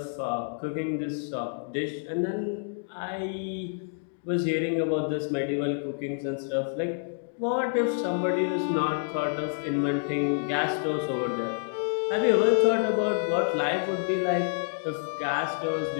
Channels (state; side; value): silent; right; digital silence